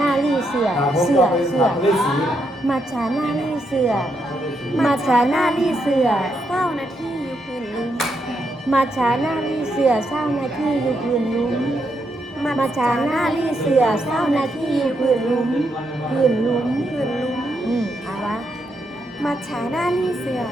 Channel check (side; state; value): both; normal; correlation 0.80